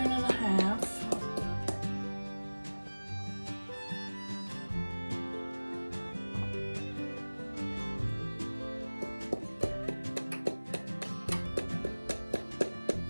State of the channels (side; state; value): both; inverted; correlation -1.00